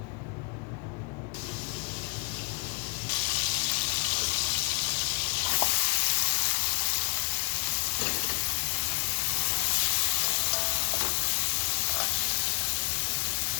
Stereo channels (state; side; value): quieter; right; 33.2 dB